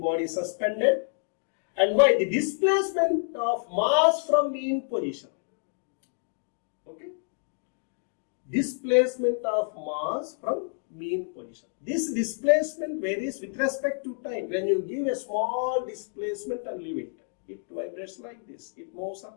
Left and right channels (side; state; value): right; silent; digital silence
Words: suspended and Y the displacement of mass from mean position. Okay. Displacement of mass from mean position. This displacement varies with respect to time. When you give a small displacement and leave it, it vibrates like this. It moves